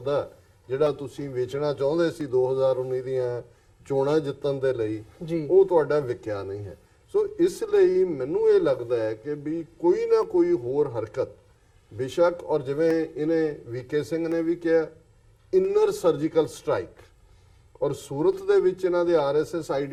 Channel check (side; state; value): both; identical; correlation 1.00